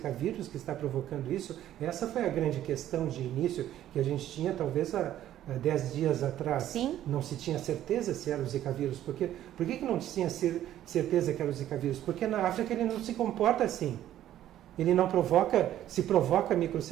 vírus que está provocando isso? Essa foi a grande questão de início que a gente tinha talvez há 10 dias atrás. Sim. Não se tinha certeza se era o Zika vírus. Por que não tinha certeza que era o Zika vírus? Porque na África ele não se comporta assim. Ele não se provoca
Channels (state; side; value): quieter; left; 12.3 dB